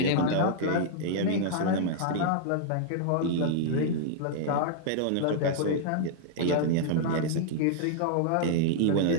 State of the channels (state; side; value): different; both; correlation -0.01